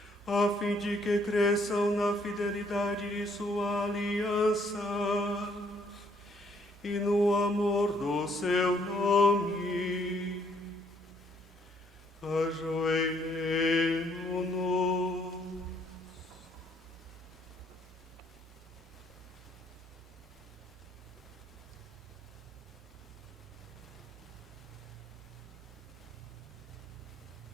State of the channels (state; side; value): normal; both; correlation 0.67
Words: a fim de que cresçam na fidelidade de sua aliança e no amor do seu nome. Ajoelhemo-nos.